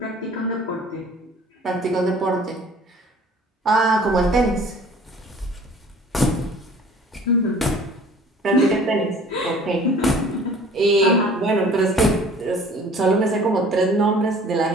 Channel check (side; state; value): both; normal; correlation 0.50